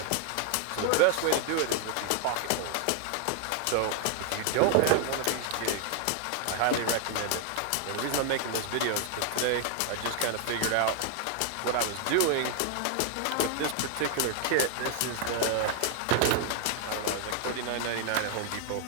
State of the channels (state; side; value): different; both; correlation 0.00